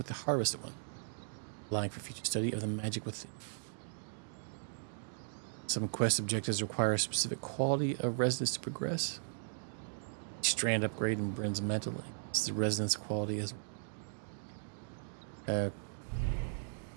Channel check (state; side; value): silent; left; digital silence